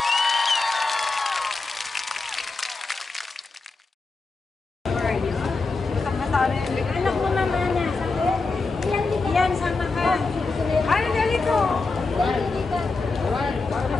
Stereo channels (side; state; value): right; quieter; 3.9 dB